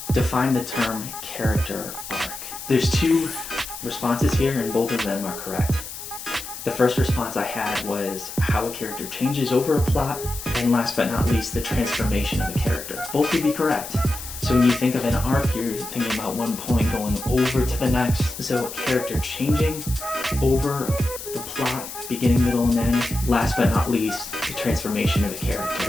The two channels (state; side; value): noise; left; hiss, 10 dB below the sound